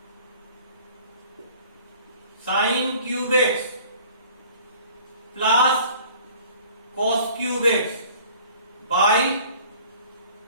sin cube x plus cos cube x by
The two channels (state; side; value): inverted; both; correlation -0.50